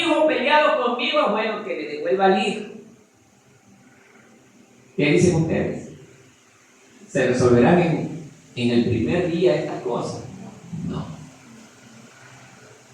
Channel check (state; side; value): identical; both; correlation 1.00